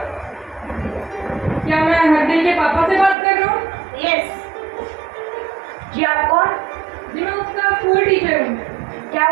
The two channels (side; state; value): left; drops out; at 3.2 s